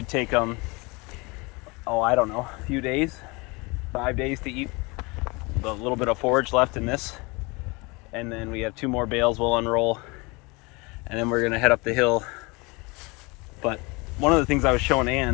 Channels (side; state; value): right; quieter; 26.6 dB